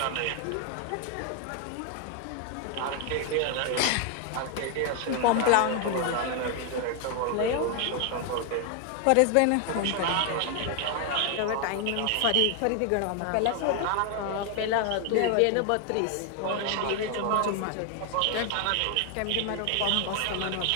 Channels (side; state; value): both; different; correlation 0.00